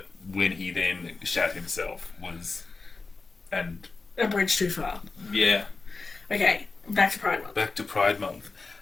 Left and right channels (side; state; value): right; quieter; 4.0 dB